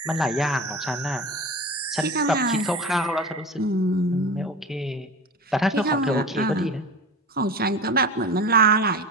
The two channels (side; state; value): both; normal; correlation 0.31